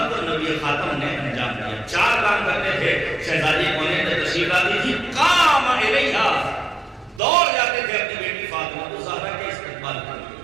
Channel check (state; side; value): drops out; left; at 7.2 s